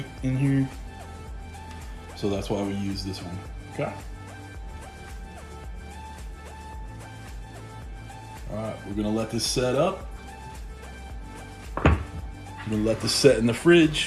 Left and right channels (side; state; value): both; identical; correlation 1.00